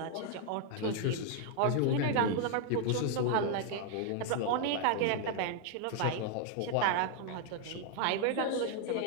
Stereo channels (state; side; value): different; both; correlation 0.00